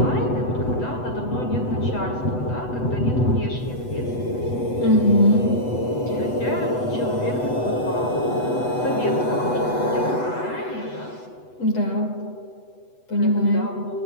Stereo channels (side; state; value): right; late; 8.1 ms